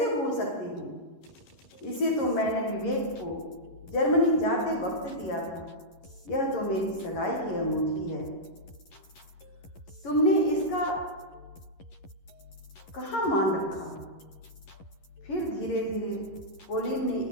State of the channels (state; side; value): late; right; 11 ms